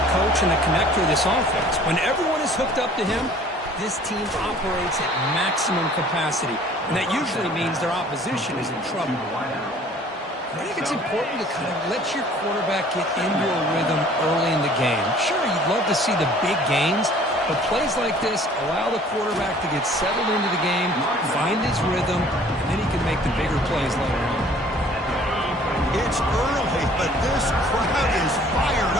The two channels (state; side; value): normal; both; correlation 0.53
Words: coach and the connector of this offense. When everyone is hooked up to him, this team operates at maximum capacity, and that usually means their opposition is in trouble. I think it's important to kind of let your quarterback get into a rhythm early in the game. Sure, you'd love to see the big gains, but plays like this allow the quarterback to get settled into the game, find his rhythm, and then he can make the bigger plays later on. It's early, but this crowd is fired